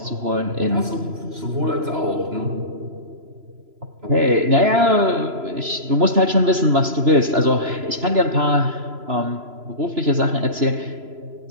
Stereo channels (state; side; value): late; left; 3.0 ms